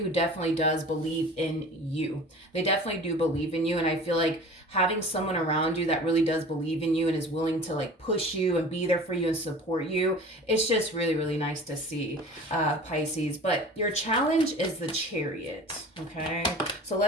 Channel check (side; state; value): both; normal; correlation 0.41